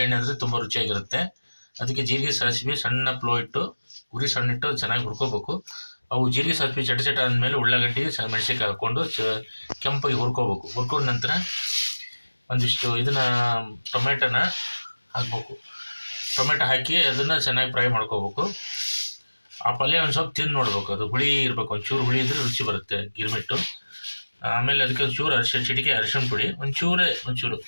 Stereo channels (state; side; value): inverted; both; correlation -1.00